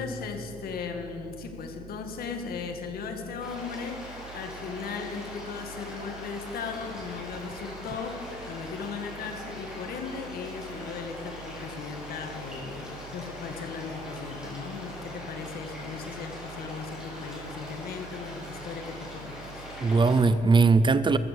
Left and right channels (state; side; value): noise; right; hum, 15 dB below the sound